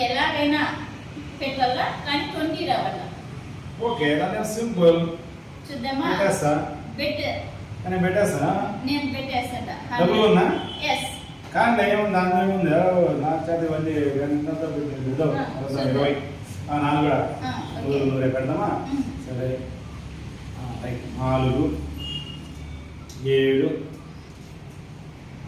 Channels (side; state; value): both; identical; correlation 1.00